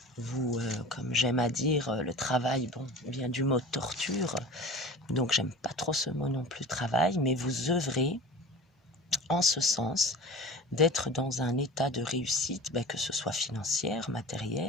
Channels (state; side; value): normal; both; correlation 0.37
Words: Vous, comme j'aime à dire, le travail, bon, vient du mot torture, donc j'aime pas trop ce mot non plus, travail, mais vous œuvrez en ce sens d'être dans un état de réussite, que ce soit financière,